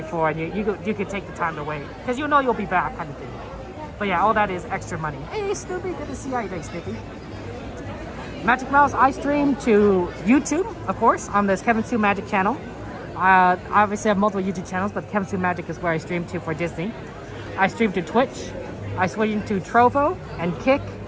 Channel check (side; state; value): both; identical; correlation 1.00